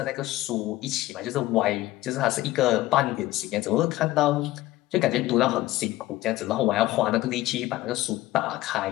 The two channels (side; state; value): right; quieter; 16.6 dB